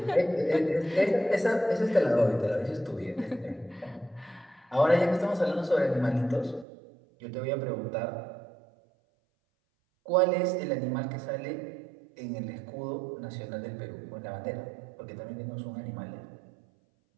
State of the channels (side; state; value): left; drops out; at 6.7 s